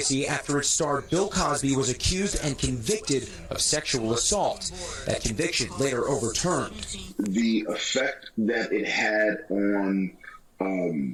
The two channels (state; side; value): identical; both; correlation 1.00